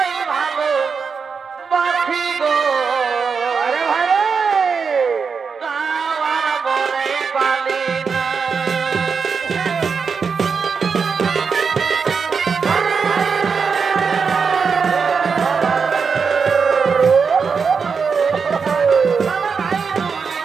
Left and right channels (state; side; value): quieter; left; 5.6 dB